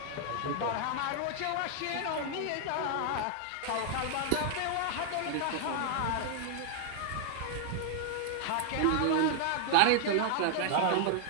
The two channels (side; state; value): both; different; correlation 0.00